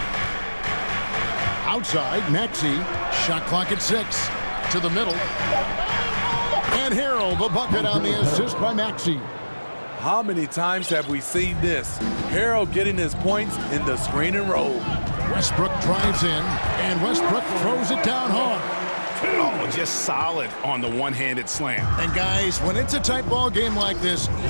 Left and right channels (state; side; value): inverted; both; correlation -1.00